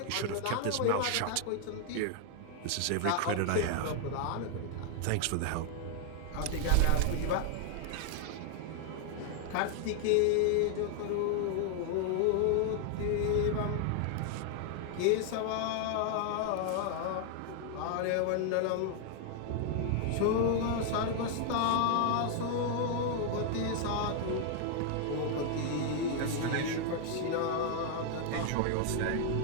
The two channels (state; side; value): different; both; correlation 0.00